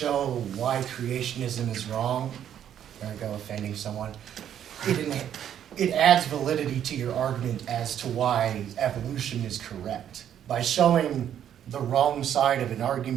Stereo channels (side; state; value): left; quieter; 9.9 dB